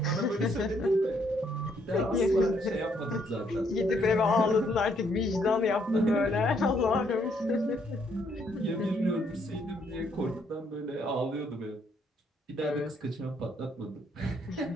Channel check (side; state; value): both; normal; correlation 0.70